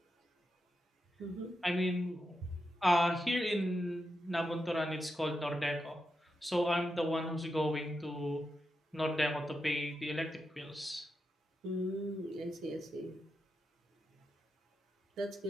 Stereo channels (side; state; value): both; normal; correlation 0.87